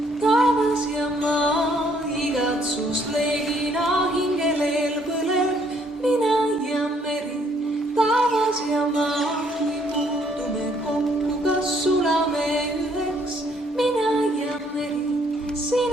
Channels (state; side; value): normal; both; correlation 0.66